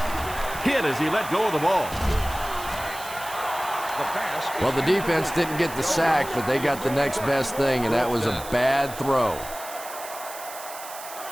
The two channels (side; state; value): right; noise; hiss, 13 dB below the sound